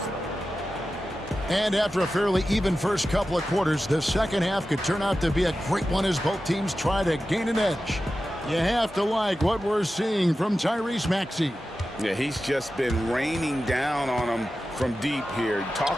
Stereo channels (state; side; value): normal; both; correlation 0.93